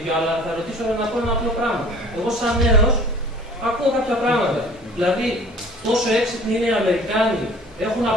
αλλά θα ρωτήσω να πω ένα απλό πράγμα. Εγώ, σαν νέος, ακούω κάποια πράγματα. Δηλαδή, τόσο έξυπνοι είναι οι Αμερικάνοι, έχουν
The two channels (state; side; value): normal; both; correlation 0.48